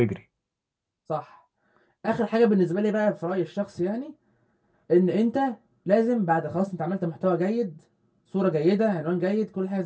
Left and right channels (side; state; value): both; identical; correlation 1.00